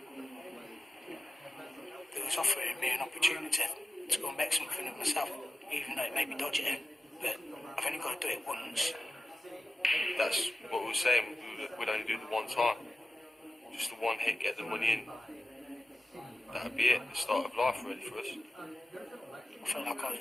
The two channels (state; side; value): normal; both; correlation 0.94